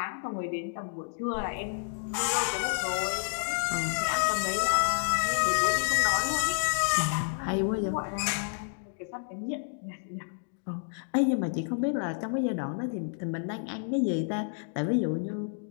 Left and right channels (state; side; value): silent; right; digital silence